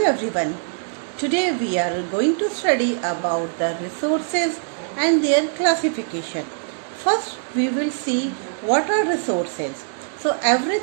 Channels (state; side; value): silent; left; digital silence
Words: everyone. Today we are going to study about the resources and their classification. First we will see what are resources. So